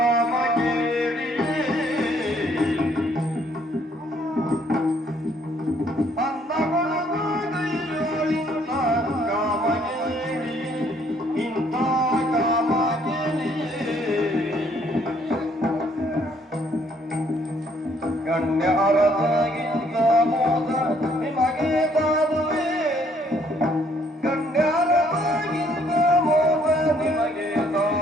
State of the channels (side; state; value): both; normal; correlation 0.65